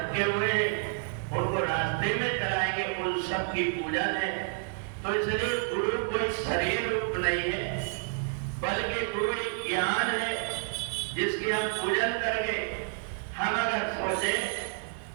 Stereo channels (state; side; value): silent; left; 58 dB below the other